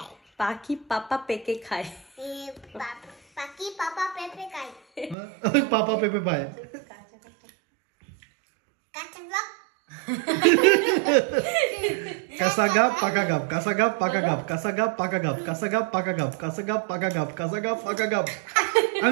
পাখি পাপা পেকে খায়। ওই পাপা পেঁপে পায়। কাঁচা গাপ পাকা গাপ, কাঁচা গাপ পাকা গাপ, কাঁচা গাপ পাকা গাপ, কাঁচা গাপ পাকা গাপ, কাঁচা গাপ পাকা গাপ, কাঁচা গাপ পাকা গাপ।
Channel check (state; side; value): drops out; left; at 5.2 s